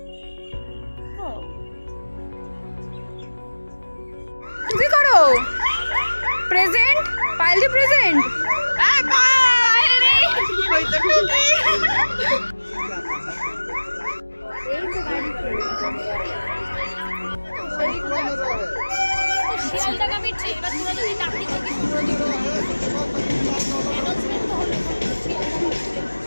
কি করো? প্রেজেন্ট পাইলি প্রেজেন্ট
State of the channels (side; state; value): both; inverted; correlation -1.00